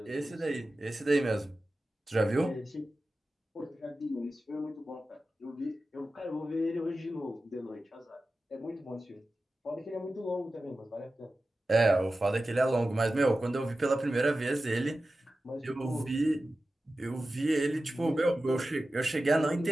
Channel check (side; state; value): both; normal; correlation 0.94